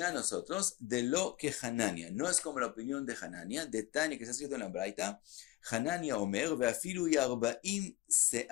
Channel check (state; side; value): quieter; right; 17.8 dB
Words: nosotros, de lo que Hanania, no es como la opinión de Hanania, de Tania que está escrito en la Braita, Hanania Omer, ve'afilu yarbaim